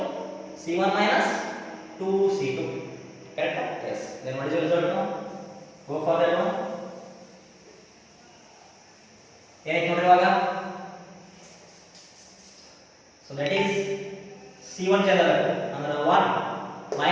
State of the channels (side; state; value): both; identical; correlation 1.00